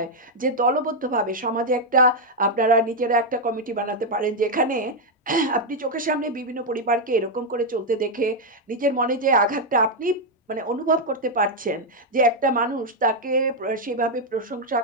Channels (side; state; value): both; normal; correlation 0.00